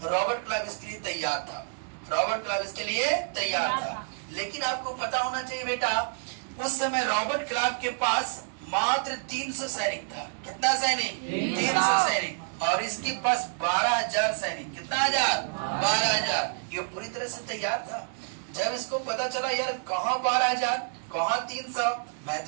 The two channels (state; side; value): silent; left; digital silence